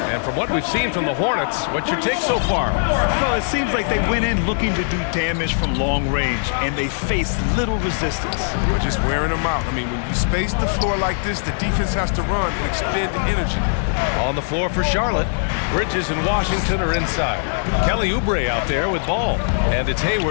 And from what we've seen from the Hornets, what's your take so far? Well, it seems like they went in looking to do damage from long range, and they faced little resistance. We're just wearing them out. I mean, when you space the floor like this, the defense has to run and expend the energy. On the floor for Charlotte, Bridges and Washington are inside. Kelly Oubre out there with Ball, and it's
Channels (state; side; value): silent; right; digital silence